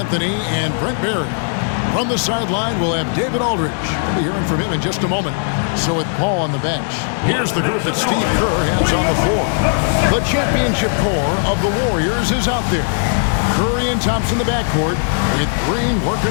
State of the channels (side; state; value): right; silent; digital silence